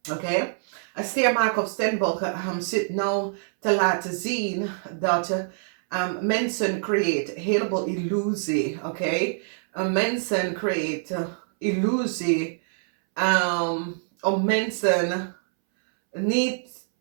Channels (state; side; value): silent; left; 62 dB below the other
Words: Oké, een steermaker op Stenbock zit nou te laten zien dat mensen creëren een heleboel illusie. Oké, mensen creëren illusie om mensen niet